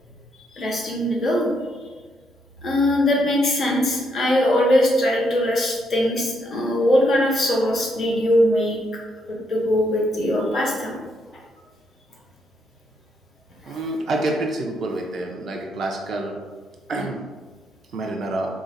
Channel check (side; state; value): both; normal; correlation 0.76